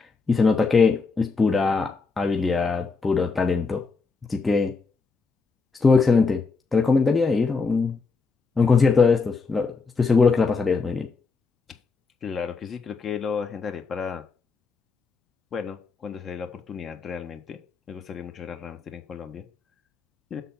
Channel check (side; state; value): right; quieter; 4.5 dB